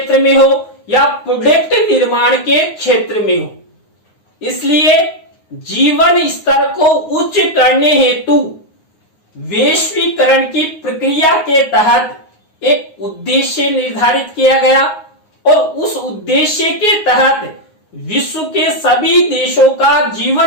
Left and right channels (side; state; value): right; late; 9.6 ms